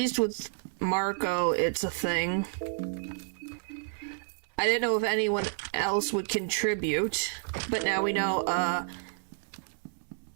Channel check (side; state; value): left; silent; 58 dB below the other